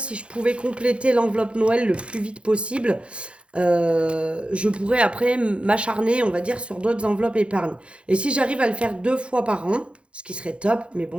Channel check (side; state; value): left; late; 0.059 ms